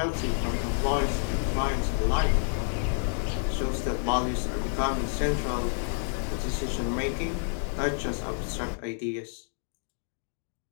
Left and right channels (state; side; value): silent; right; 59 dB below the other